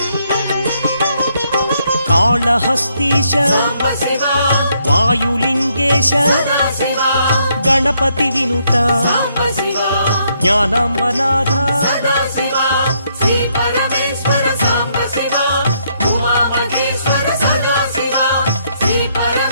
కాళహస్తీశ సాంబ శివ వాయులింగేశ సదా శివ గణపతి వినుత సాంబ శివ జ్ఞానాంబనాథ సదా శివ శ్రీ పరమేశ్వర సాంబ శివ ఉమా మహేశ్వర సదా శివ శ్రీ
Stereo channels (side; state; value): both; inverted; correlation -0.73